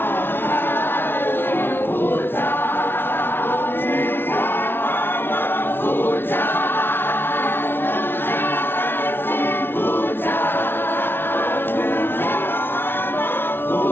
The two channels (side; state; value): right; late; 0.11 ms